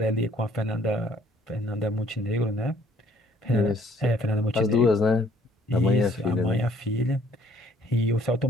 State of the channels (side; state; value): both; normal; correlation 0.61